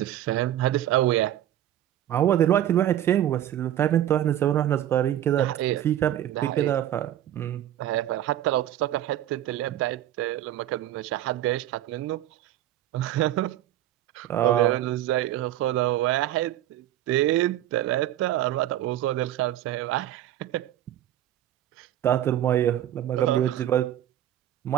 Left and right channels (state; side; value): quieter; left; 12.2 dB